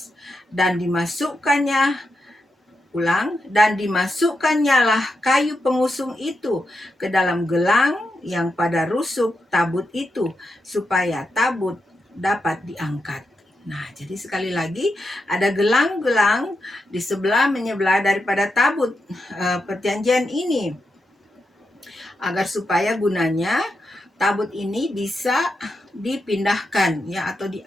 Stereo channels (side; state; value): both; normal; correlation 0.86